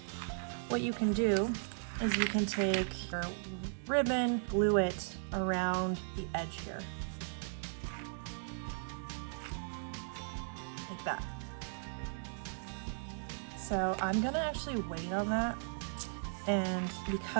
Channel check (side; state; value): left; silent; digital silence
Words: what you can do is you can take your ribbon, glue it around the edge here. Like that. So I'm gonna actually wait on that, and